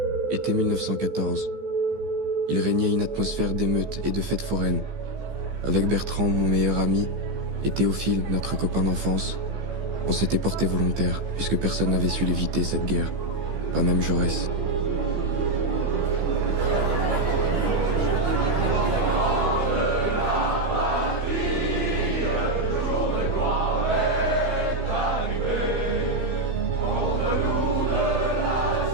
Été 1914. Il régnait une atmosphère d'émeutes et de fêtes foraines. Avec Bertrand, mon meilleur ami, et Théophile, notre copain d'enfance, on s'était porté volontaire, puisque personne n'avait su l'éviter, cette guerre. Pas même Jaurès.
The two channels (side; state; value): left; late; 15 ms